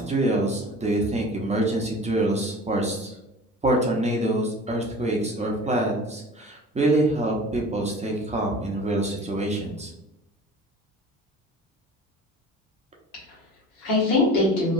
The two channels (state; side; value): normal; both; correlation 0.41